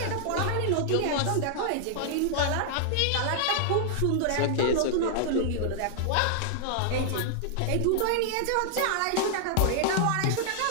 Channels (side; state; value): both; different; correlation -0.01